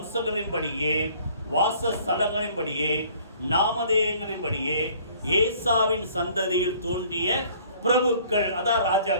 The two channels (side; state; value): both; inverted; correlation -0.55